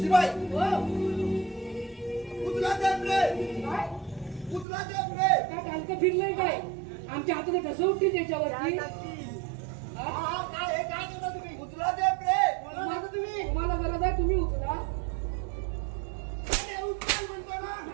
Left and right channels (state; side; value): drops out; left; at 4.7 s